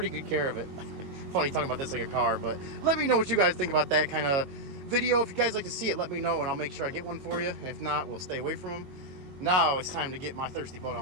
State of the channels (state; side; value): late; left; 22 ms